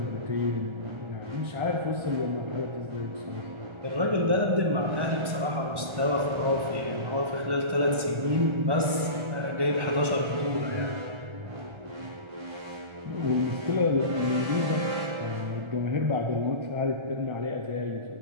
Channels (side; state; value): left; late; 1.3 ms